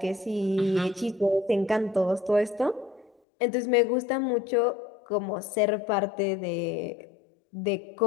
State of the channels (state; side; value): drops out; right; at 3.1 s